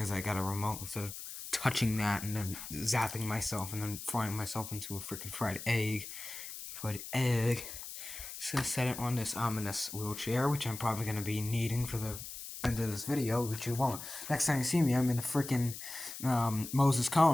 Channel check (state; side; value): noise; left; hiss, 10 dB below the sound